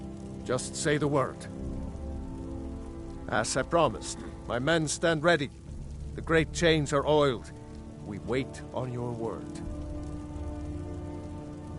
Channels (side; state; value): both; identical; correlation 1.00